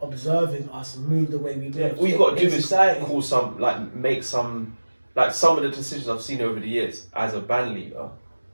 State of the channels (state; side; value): inverted; both; correlation -1.00